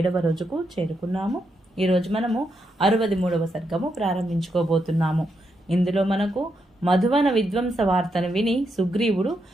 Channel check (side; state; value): both; normal; correlation 0.81